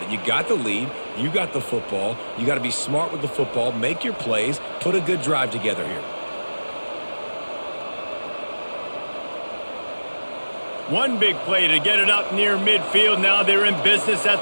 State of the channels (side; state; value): both; inverted; correlation -1.00